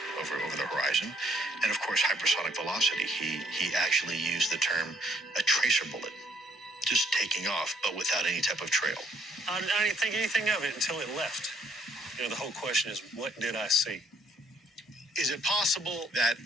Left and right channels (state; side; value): normal; both; correlation 0.67